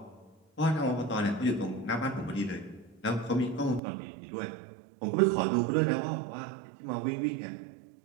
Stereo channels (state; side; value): drops out; left; at 3.8 s